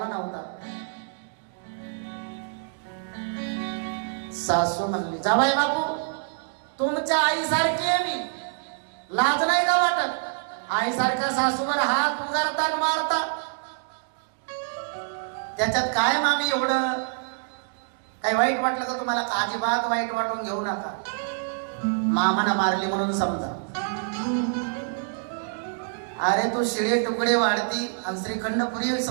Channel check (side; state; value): left; silent; digital silence